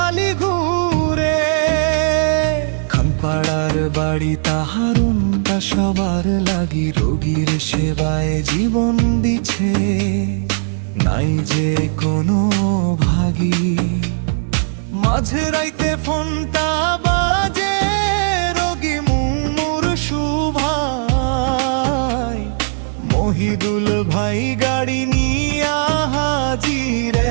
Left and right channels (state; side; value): silent; left; 68 dB below the other